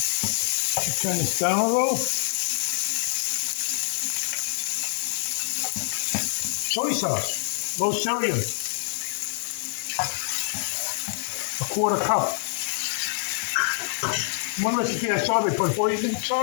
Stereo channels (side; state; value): right; silent; digital silence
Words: Turn this down a little. Soy sauce, low sodium, a quarter cup. One recipe I saw they put hoisin